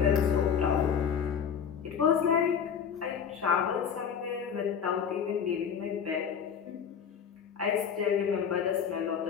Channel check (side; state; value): right; quieter; 7.5 dB